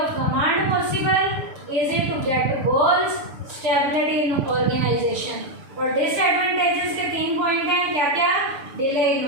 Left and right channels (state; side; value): late; left; 6.9 ms